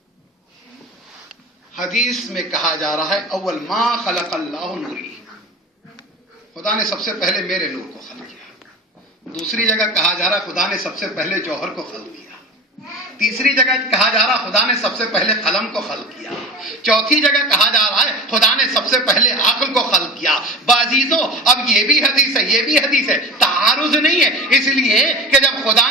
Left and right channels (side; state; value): both; normal; correlation 0.31